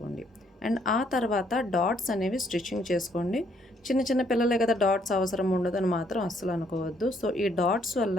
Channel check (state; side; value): normal; both; correlation 0.68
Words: అండ్ ఆ తర్వాత డాట్స్ అనేవి స్టిచ్చింగ్ చేసుకోండి. చిన్న చిన్న పిల్లలే కదా, డాట్స్ అవసరం ఉండదు అని మాత్రం అస్సలు అనుకోవద్దు. సో ఈ డాట్స్